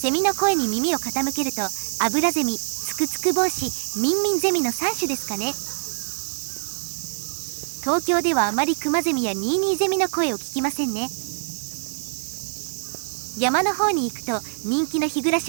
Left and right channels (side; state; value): left; silent; digital silence